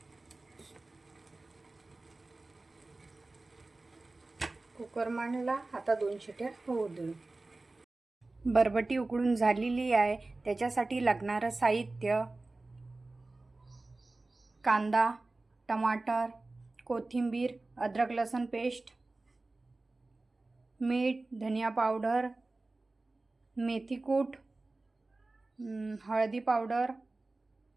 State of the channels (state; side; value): quieter; left; 3.2 dB